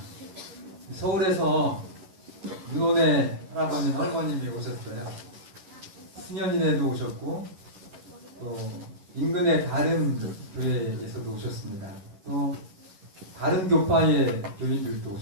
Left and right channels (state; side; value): late; left; 11 ms